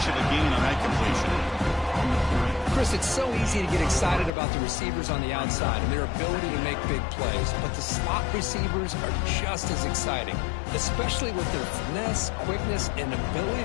of a gain on that completion. Chris, it's so easy to get excited about the receivers on the outside and their ability to make big plays, but the slot receivers are just as exciting, especially with their finesse, quickness, and ability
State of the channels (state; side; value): drops out; right; at 4.3 s